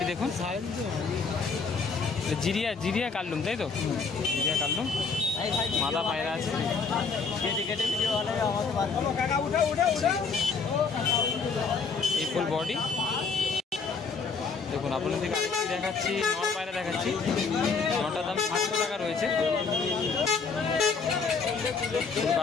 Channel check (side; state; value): right; quieter; 5.0 dB